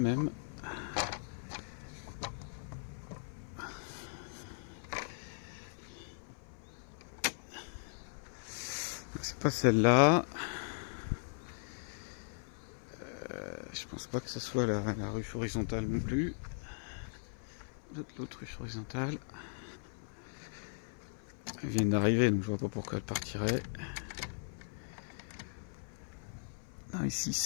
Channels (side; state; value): right; silent; 52 dB below the other